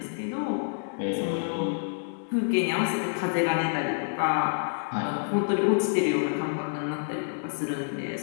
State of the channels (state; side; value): silent; right; 58 dB below the other